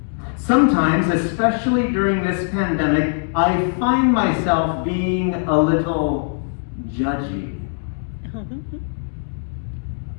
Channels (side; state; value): right; silent; digital silence